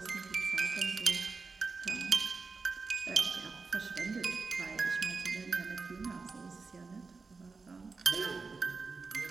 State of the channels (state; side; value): quieter; left; 4.3 dB